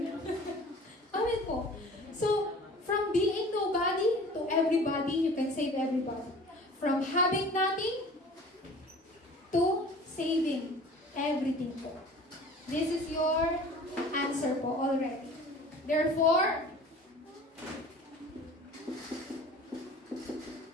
Amen po. So, from being nobody to everybody, you can save everybody. From having nothing to saving everything po. This is your answer po already. Therefore,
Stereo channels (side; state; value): both; normal; correlation 0.44